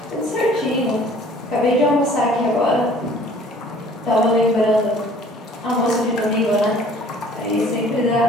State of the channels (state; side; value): normal; both; correlation 0.53